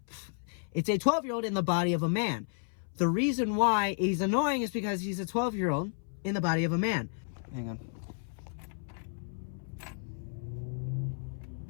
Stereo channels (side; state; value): right; silent; 56 dB below the other